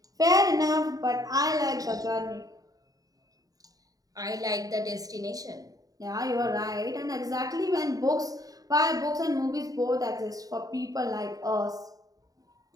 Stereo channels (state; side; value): late; left; 0.18 ms